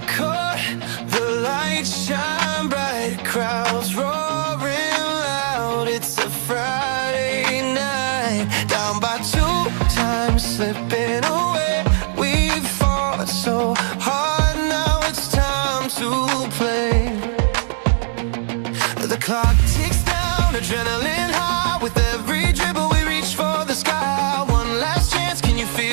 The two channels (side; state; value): left; silent; digital silence